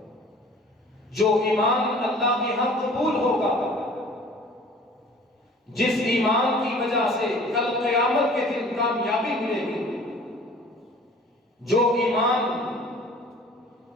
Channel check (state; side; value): normal; both; correlation 0.48